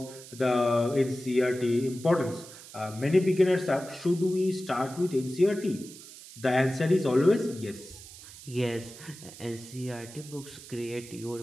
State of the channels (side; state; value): right; noise; hiss, 17 dB below the sound